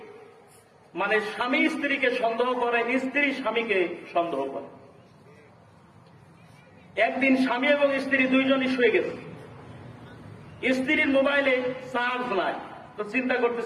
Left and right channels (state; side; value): identical; both; correlation 1.00